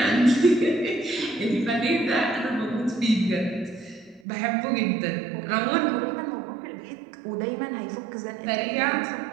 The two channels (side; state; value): left; drops out; at 4.2 s